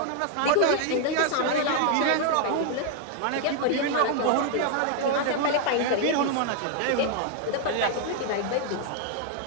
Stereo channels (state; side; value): different; both; correlation 0.00